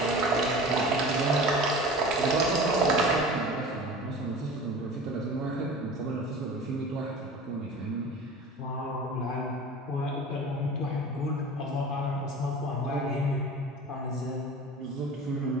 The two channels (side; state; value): both; normal; correlation 0.38